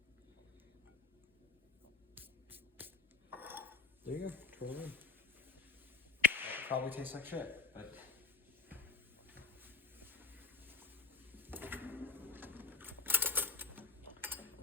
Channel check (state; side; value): quieter; right; 3.8 dB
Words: there you go. Twirl it in. Probably tastes like shit, but